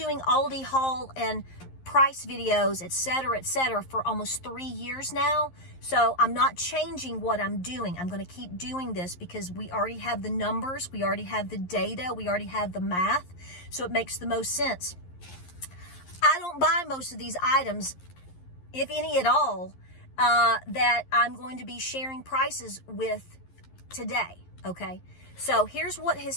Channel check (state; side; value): late; right; 11 ms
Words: ALDI haul and price videos, et cetera, for almost 3 years now. So I'm not changing what I'm doing. I'm going to keep doing this because we already have the numbers. We already have the data. We already have the math. So it makes the most sense. I don't buy most of these items, if any at all, that I'm going to be sharing prices with today, okay? So here's what